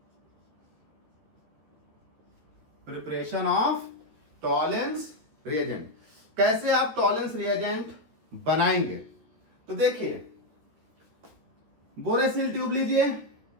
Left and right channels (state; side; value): late; left; 13 ms